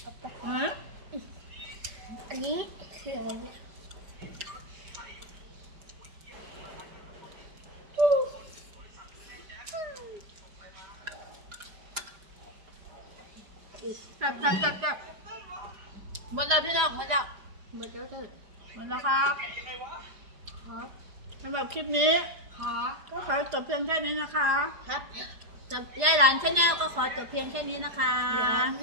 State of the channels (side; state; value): left; late; 4.8 ms